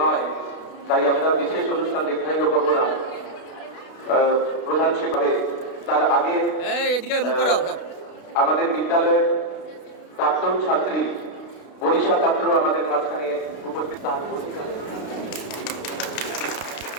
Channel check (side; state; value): right; late; 32 ms